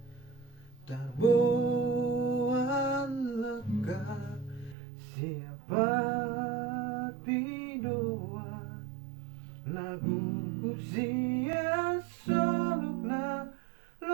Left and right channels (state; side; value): drops out; left; at 4.8 s